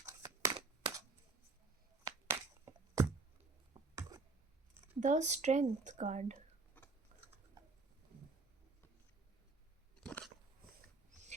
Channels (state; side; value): quieter; left; 4.0 dB